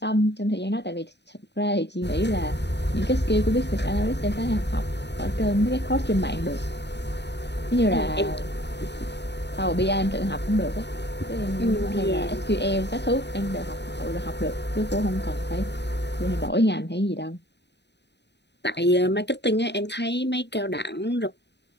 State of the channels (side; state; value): right; late; 0.50 ms